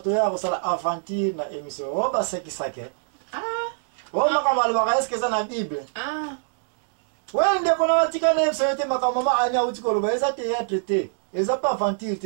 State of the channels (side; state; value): left; silent; digital silence